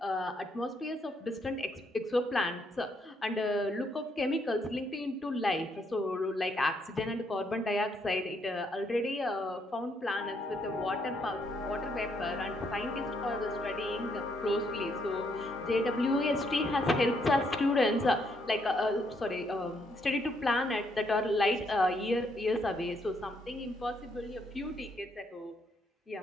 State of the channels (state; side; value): normal; both; correlation 0.73